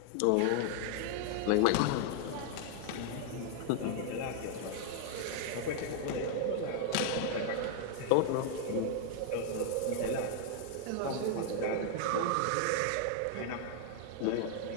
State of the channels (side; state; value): both; different; correlation 0.00